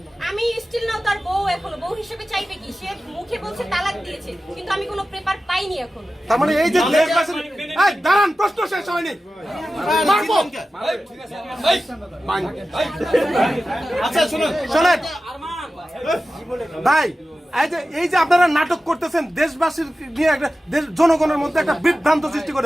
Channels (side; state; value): both; normal; correlation 0.94